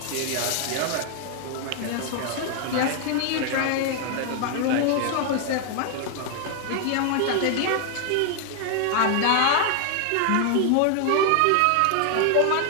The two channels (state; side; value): different; both; correlation 0.00